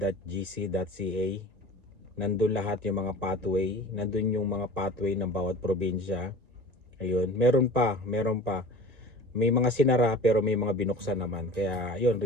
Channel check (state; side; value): late; left; 1.9 ms